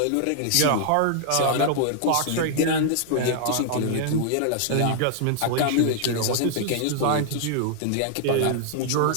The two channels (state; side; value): different; both; correlation -0.01